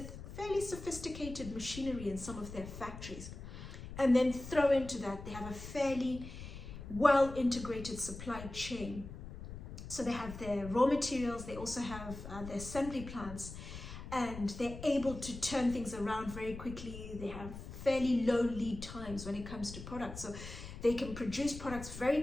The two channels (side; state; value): left; noise; rumble, 11 dB below the sound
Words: fairly sophisticated machinery in some of their factories. And then throw into that, they have a fairly well integrated supply chain. So they have their raw materials, they also have their assembly plants, and they're able to turn things around very quickly. They have fairly low lead times when it comes to products. So they can produce products very